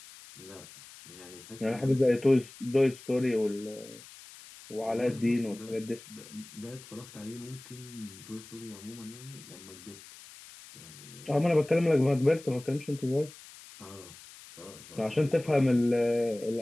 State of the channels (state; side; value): noise; left; hiss, 18 dB below the sound